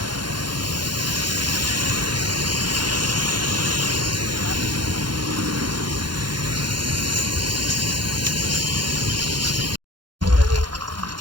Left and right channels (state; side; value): late; left; 0.71 ms